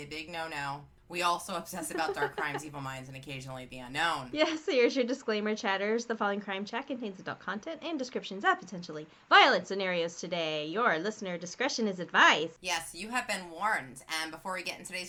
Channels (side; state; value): both; identical; correlation 1.00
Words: big no-no. We also obsess about dark crimes, evil minds, and occasionally the unknown. Yes, so here's your disclaimer, chatters. The following crime chat contains adult content and descriptions of potentially violent scenarios today. Your listener discretion is advised. Yes, you have been warned. And before we get in